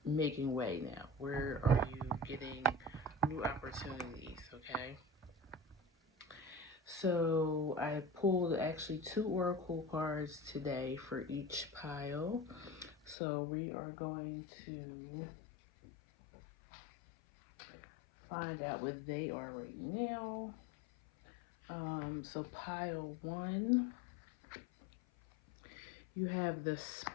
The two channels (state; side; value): drops out; right; at 13.2 s